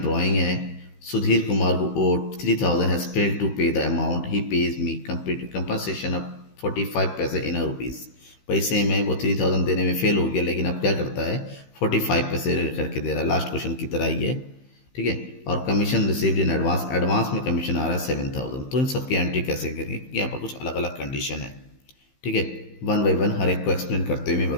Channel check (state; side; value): late; right; 15 ms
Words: है। सुधीर कुमार को ओड 3,000 हैज फेल्ड टू पे the amount, he page me compensation of 45 पैसे इन रुपीज़। पैसे में वो 3,000 देने में फेल हो गया, लेकिन अब क्या करता है 45 पैसे करके दे रहा है, लास्ट क्वेश्चन की तरह ही है। ठीक है। और commission received in advance, advance में कमीशन आ रहा है 7000। तो इन सबकी एंट्री कैसे करेंगे, क्योंकि यहाँ पर कुछ अलग अलग कंडीशन है। ठीक है, वन बाई वन हर एक को एक्सप्लेन करते हुए मैं